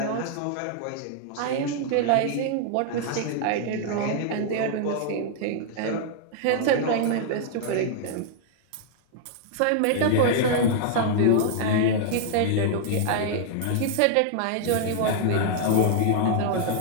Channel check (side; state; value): both; different; correlation -0.01